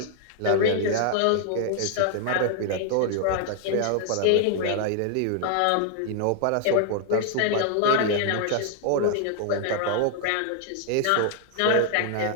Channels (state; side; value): different; both; correlation 0.00